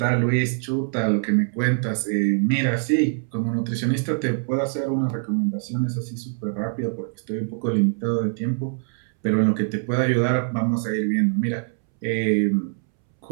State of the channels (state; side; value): silent; left; 63 dB below the other